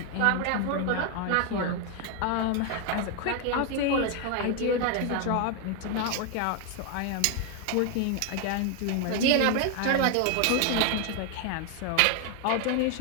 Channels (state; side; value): different; both; correlation 0.01